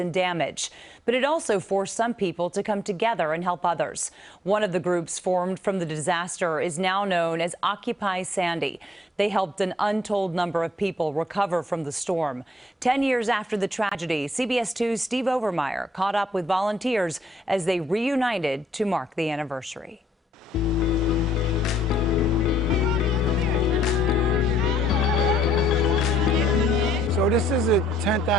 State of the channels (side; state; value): both; normal; correlation 0.70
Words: damage. But it also forced some people to come together and help others. One of the groups formed from the disaster is now known as Occupy Sandy. They helped an untold number of people recover from the storm. 10 years after the tragedy, CBS 2's Steve Overmyer caught up with volunteers as they reunited to mark the anniversary. So this is the 10th